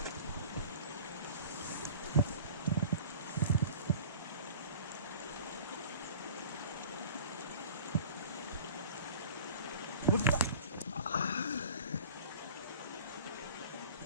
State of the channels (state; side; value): inverted; both; correlation -0.42